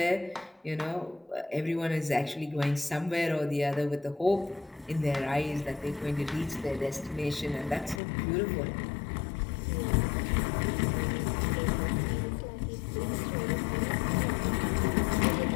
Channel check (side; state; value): right; drops out; at 8.0 s